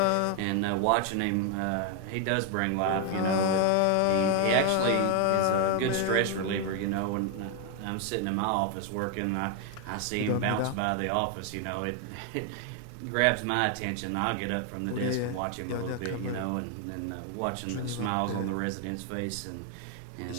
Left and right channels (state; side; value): different; both; correlation 0.01